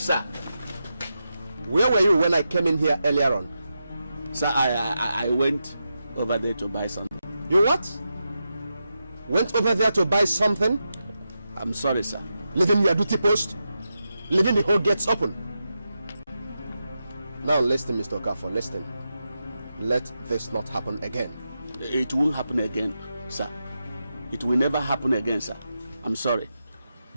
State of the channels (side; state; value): both; inverted; correlation -0.88